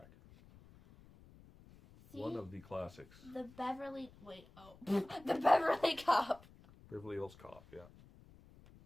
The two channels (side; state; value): left; noise; rumble, 23 dB below the sound